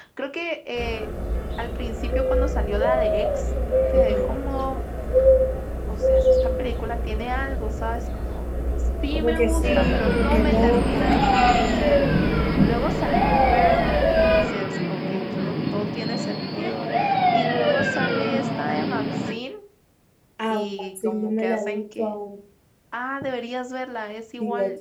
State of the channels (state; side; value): identical; both; correlation 1.00